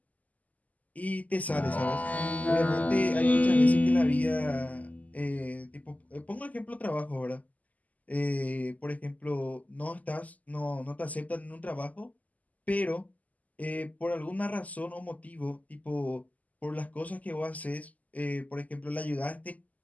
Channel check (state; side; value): late; right; 0.076 ms